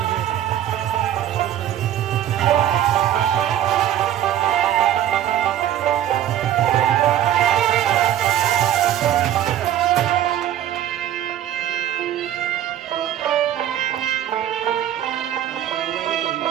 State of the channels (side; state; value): left; quieter; 11.3 dB